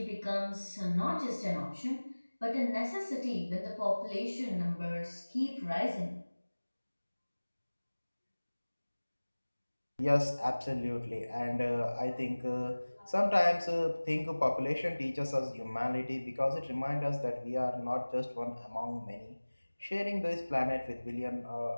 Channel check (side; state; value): both; inverted; correlation -1.00